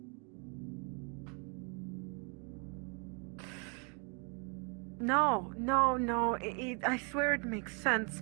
No. I swear it makes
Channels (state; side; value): quieter; left; 36.6 dB